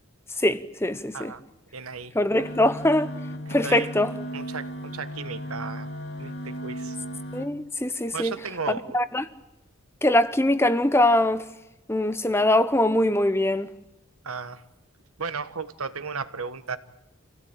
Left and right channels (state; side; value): normal; both; correlation 0.66